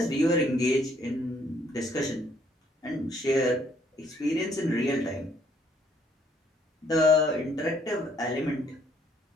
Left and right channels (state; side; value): normal; both; correlation 0.66